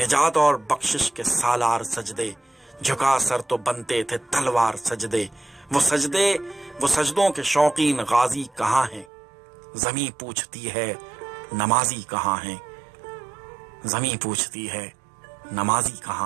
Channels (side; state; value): left; drops out; at 9.1 s